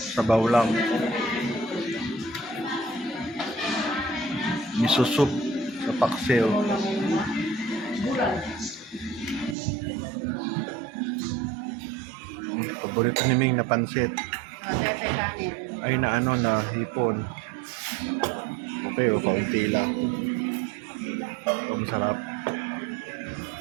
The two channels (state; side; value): drops out; left; at 9.6 s